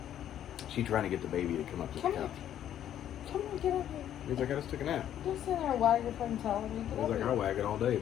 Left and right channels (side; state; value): right; quieter; 10.8 dB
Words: She's trying to get the baby to come up to Come the here. couch. Come on, get up here. He's like, I just took a nap. Don't sit there and wag your fucking tail at me. Get He's up like, here. I'll wag it all day,